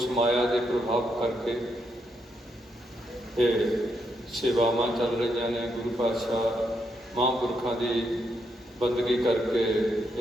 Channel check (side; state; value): both; normal; correlation 0.79